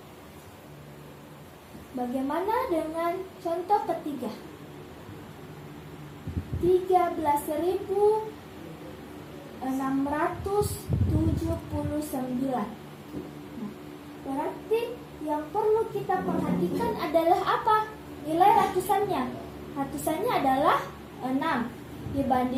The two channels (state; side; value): identical; both; correlation 1.00